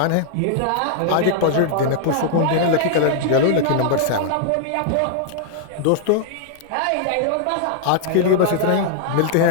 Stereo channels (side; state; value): both; different; correlation -0.01